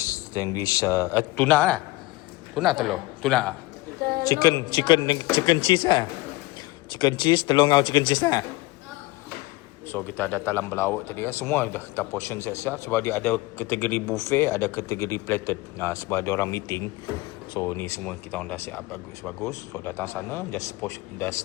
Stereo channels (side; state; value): right; quieter; 21.0 dB